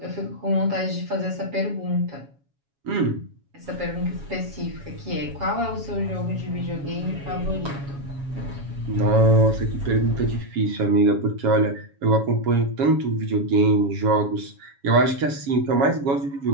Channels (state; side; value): late; left; 7.2 ms